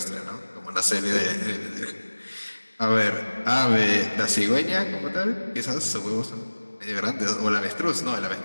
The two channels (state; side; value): inverted; both; correlation -1.00